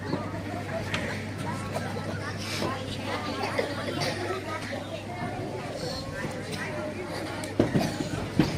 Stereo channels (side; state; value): both; identical; correlation 1.00